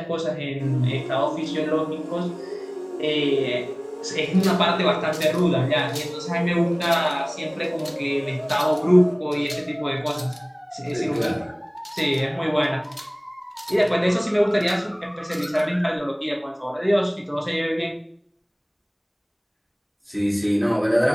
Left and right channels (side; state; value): both; identical; correlation 1.00